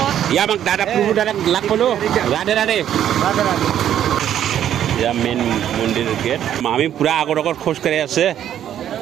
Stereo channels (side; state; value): left; quieter; 10.5 dB